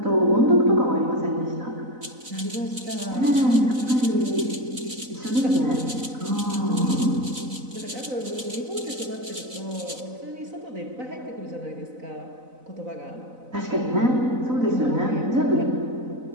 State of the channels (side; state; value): left; late; 4.0 ms